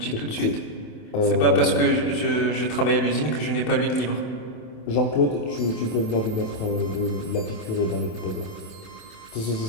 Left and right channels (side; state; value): right; late; 27 ms